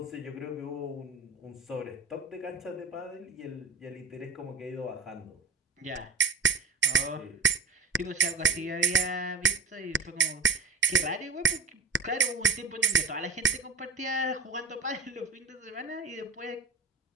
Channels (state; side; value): quieter; left; 4.4 dB